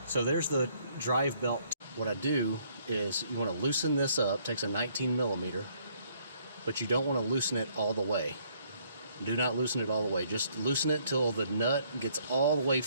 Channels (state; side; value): inverted; both; correlation -0.66